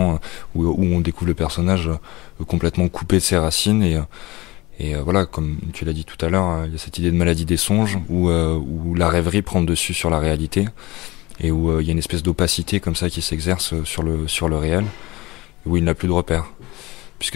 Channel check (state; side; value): quieter; right; 20.9 dB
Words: où on découvre le personnage complètement coupé de ses racines, et voilà, comme tu l'as dit tout à l'heure, il y a cette idée de maladie des songes où la rêverie prend le dessus sur la réalité, et où il y a une espèce d'opacité comme ça qui s'exerce sur le réel, où il n'a plus de repères,